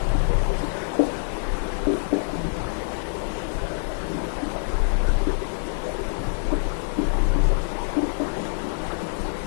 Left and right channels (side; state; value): right; silent; digital silence